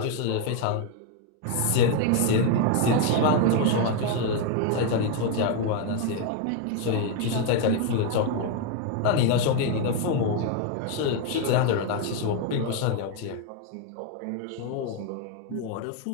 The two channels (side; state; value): both; different; correlation 0.01